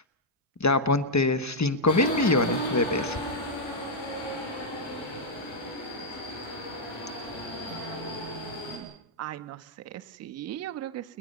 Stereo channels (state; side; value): normal; both; correlation -0.04